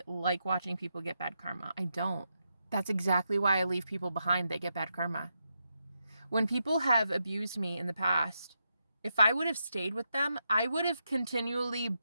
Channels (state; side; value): inverted; both; correlation -0.84